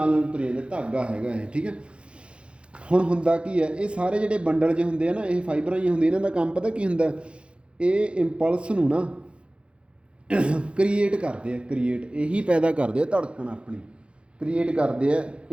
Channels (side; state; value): left; late; 0.058 ms